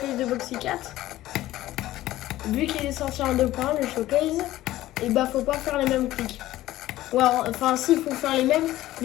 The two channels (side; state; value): right; quieter; 15.4 dB